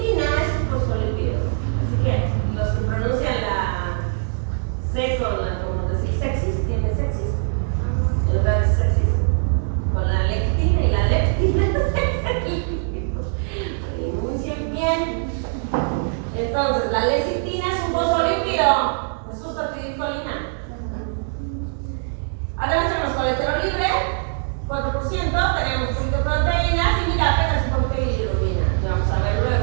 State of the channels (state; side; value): silent; left; 64 dB below the other